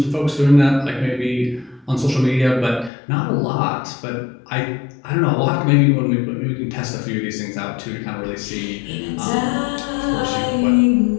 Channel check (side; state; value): right; drops out; at 2.9 s